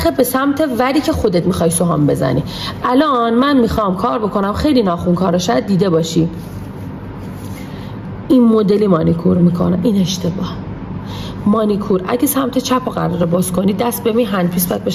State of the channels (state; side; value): identical; both; correlation 1.00